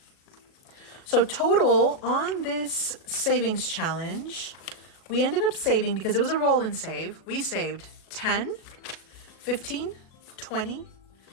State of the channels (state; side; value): late; right; 37 ms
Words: So total on this savings challenge, we ended up saving, because it was a roll and save, we saved 10, 15, 20,